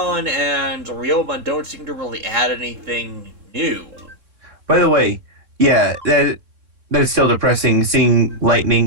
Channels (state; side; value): late; left; 3.7 ms